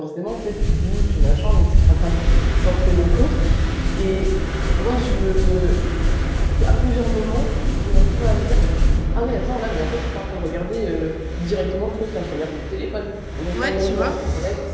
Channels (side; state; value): both; identical; correlation 1.00